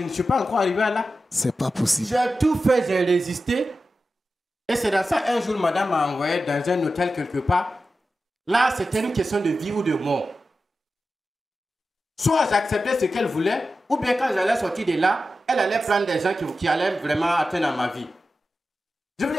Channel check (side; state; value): both; normal; correlation 0.92